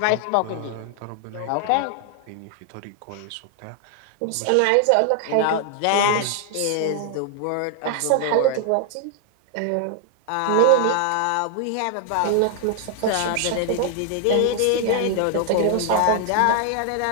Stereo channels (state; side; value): different; both; correlation 0.00